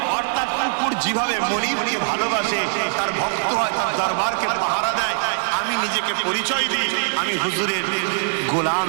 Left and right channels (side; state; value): left; silent; digital silence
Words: অর্থাৎ কুকুর যেভাবে মনিবকে ভালোবাসে, তার ভক্ত হয়, তার দরবারকে পাহারা দেয়। আমি নিজেকে পরিচয় দিই আমি হুজুরের গোলাম,